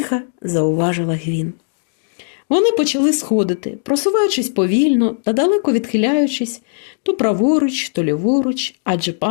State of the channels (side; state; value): right; silent; digital silence